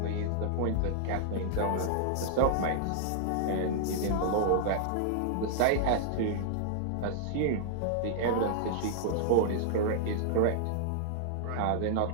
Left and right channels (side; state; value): both; different; correlation -0.01